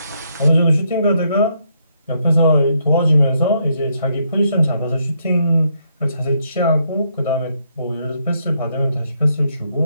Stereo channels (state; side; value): inverted; both; correlation -0.75